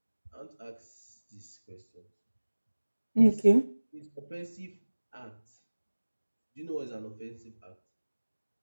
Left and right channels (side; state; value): both; inverted; correlation -1.00